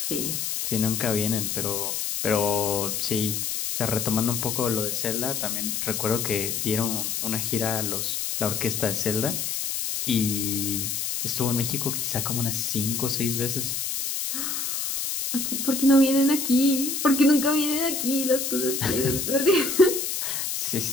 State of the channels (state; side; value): noise; left; hiss, 2 dB below the sound